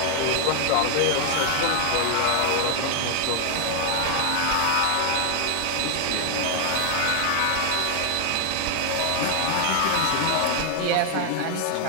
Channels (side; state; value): both; different; correlation 0.00